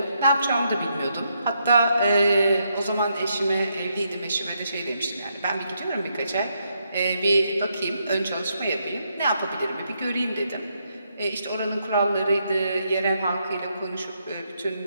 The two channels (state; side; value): inverted; both; correlation -0.78